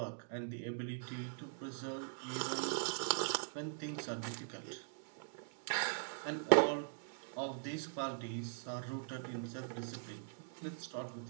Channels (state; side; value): silent; left; digital silence